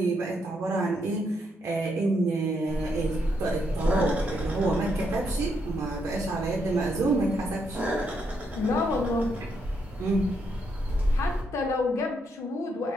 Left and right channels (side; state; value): both; normal; correlation 0.77